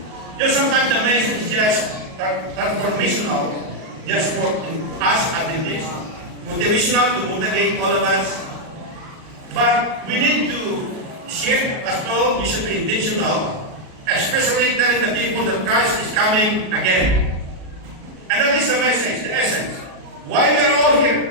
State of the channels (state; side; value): late; left; 38 ms